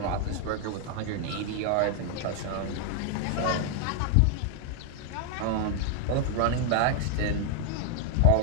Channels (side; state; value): both; different; correlation 0.00